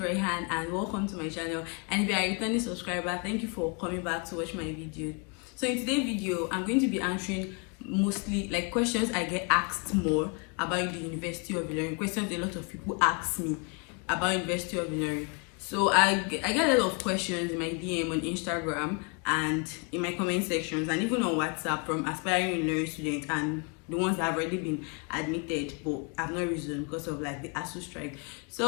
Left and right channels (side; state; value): right; quieter; 34.9 dB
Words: and welcome to my channel. And if you are a returning subscriber, thank you for coming back to watch my video. So in today's video, I'm going to be answering mostly like questions I get asked more about the University of Ilorin. Questions a lot of people ask me about University of Ilorin. So I get a lot of questions in my DM on Instagram and in my comment sections and even on WhatsApp from aspiring Ilorin students and the ones that have already been admitted but have not risen because of like the ASU strike.